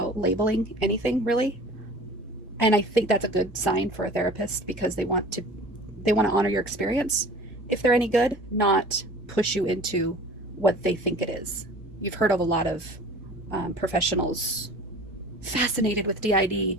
labeling anything, really. And I think that's a good sign for a therapist, because they want to honor your experience if they're any good, not push you into what they think it is. You've heard of a lot of professionals fascinated with d.i.d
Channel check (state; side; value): normal; both; correlation 0.43